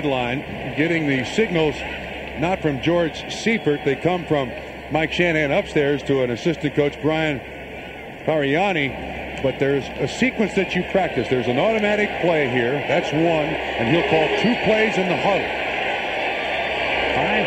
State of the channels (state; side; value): identical; both; correlation 1.00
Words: getting the signals not from George Seifert. They come from Mike Shanahan upstairs to an assistant coach, Brian Pariani. But there's a sequence that you practice. There's an automatic play here. That's one. And he'll call 2 plays in the huddle.